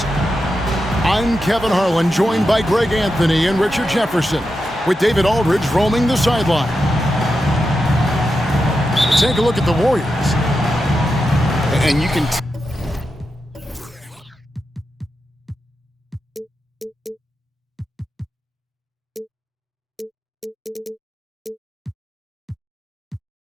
I'm Kevin Harlan, joined by Greg Anthony and Richard Jefferson, with David Aldridge roaming the sideline. Take a look at the Warriors. And you can...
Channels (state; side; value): normal; both; correlation 0.88